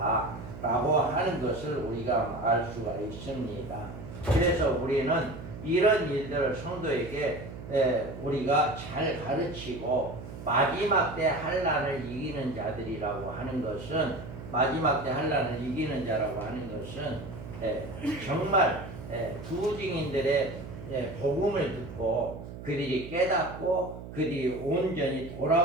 라고 하는 것을 우리가 알 수가 있습니다. 그래서 우리는 이런 일들을 성도에게 우리가 잘 가르치고 마지막 때 환난을 이기는 자들이라고 하는 것은, 마지막 때 환난을 이기는 자라고 하는 것은 정말 부증인들의 복음을 듣고 그들이 깨닫고 그들이 온전히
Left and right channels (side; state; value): right; noise; hum, 12 dB below the sound